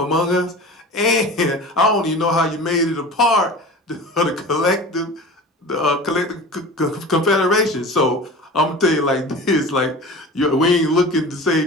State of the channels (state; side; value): normal; both; correlation 0.36